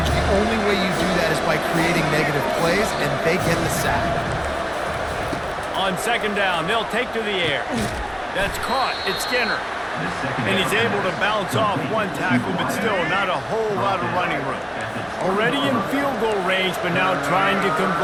The only way you do that is by creating negative plays, and they get the sack. On second down, they'll take to the air. That's caught. It's Skinner. And he's able to bounce off one tackle, but still not a whole lot of running room. Already in field goal range, but now trying to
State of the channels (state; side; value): identical; both; correlation 1.00